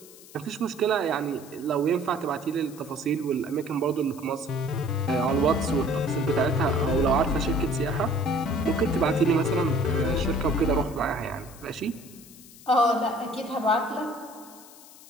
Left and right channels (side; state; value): left; noise; hiss, 20 dB below the sound